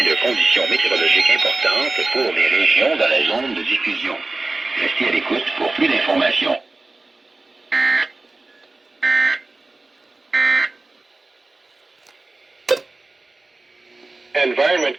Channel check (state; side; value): quieter; left; 3.2 dB